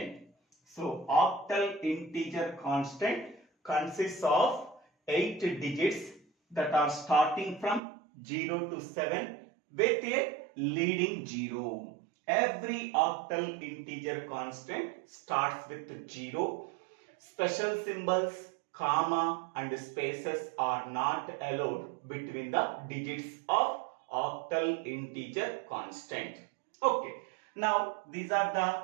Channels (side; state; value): left; drops out; at 7.8 s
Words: So octal integer constant consists of 8 digits that are starting from 0 to 7 with a leading 0. Every octal integer constant starts with 0. Special symbols, comma and spaces are not allowed between the digits of octal integer constant. Okay. Now, these are